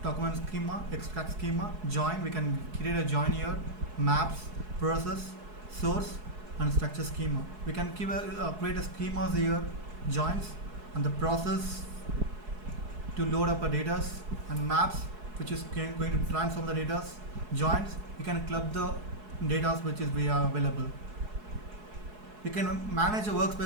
document schema, extract schema, join. We can create a join here, maps, process, source, and structure schema. We can create a schemas here, joins, and the process to load up a data, and maps which is going to transform the data, joins. We can club the data which is available. We can manage a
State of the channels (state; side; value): late; left; 4.7 ms